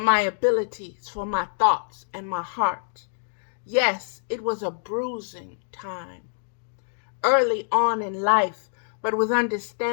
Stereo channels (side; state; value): right; silent; digital silence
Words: abilities, for my thoughts, and my heart. Yes, it was a bruising time. Early on in life, but with